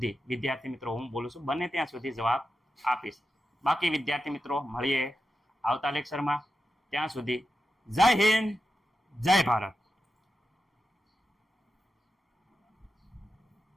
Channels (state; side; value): normal; both; correlation 0.89